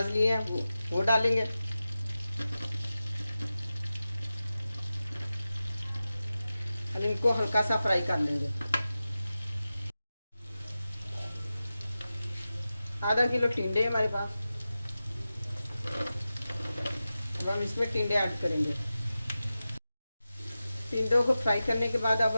लिए हैं, वो डालेंगे। हम इनको हल्का सा फ्राई कर लेंगे। आधा किलो टिंडे हमारे पास। अब हम इसमें टिंडे ऐड करेंगे। टिंडों को फ्राई करने के बाद अब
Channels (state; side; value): inverted; both; correlation -0.94